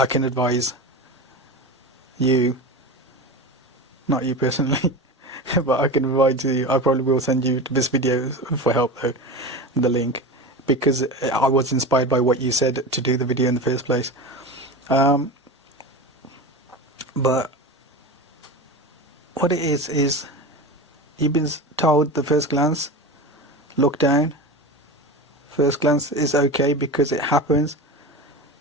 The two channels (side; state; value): both; normal; correlation 0.27